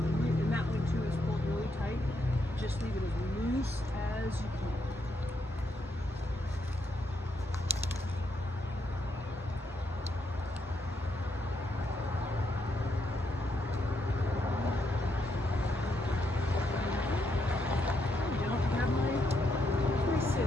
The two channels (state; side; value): normal; both; correlation 0.78